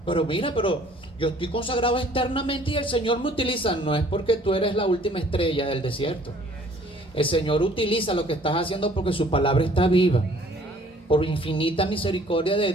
mira, pero yo estoy consagrado externamente y el Señor me utiliza. No es porque tú eres la última estrella del desierto. El Señor utiliza lo que estás haciendo porque su palabra está viva. Por infinita misericordia de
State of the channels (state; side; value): normal; both; correlation 0.56